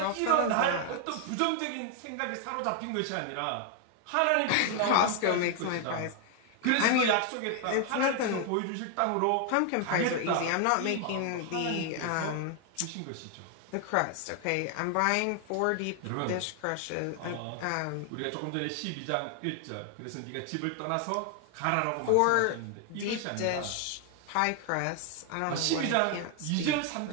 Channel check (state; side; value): different; both; correlation 0.00